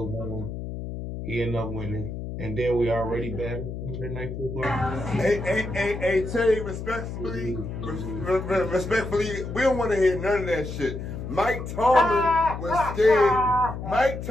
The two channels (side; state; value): left; noise; hum, 7 dB below the sound